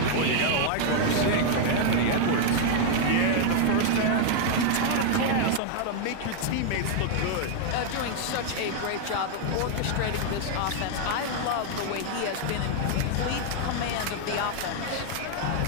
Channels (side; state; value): both; different; correlation 0.00